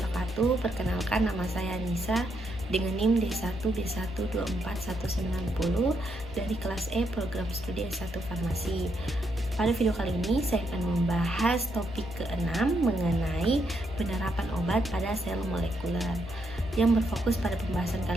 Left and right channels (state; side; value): normal; both; correlation 0.78